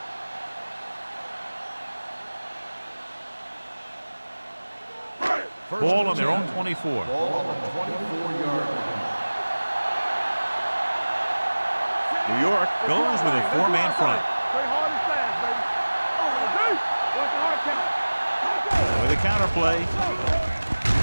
Ball on their own 24. Ball on the 24-yard line. New York goes with a 4-man front. Play hard and fast, baby. Watch the hard count. With a counter play.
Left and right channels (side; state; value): both; inverted; correlation -1.00